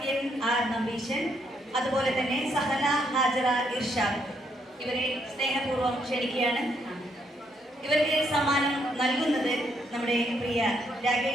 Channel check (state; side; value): normal; both; correlation 0.74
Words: R Nambeesan, അതുപോലെ തന്നെ സഹല ഹാജറ ഇർഷാദ്, ഇവരെ സ്നേഹപൂർവ്വം ക്ഷണിക്കുകയാണ്. ഇവർക്ക് സമ്മാനം നൽകുന്നത് നമ്മുടെ പ്രിയ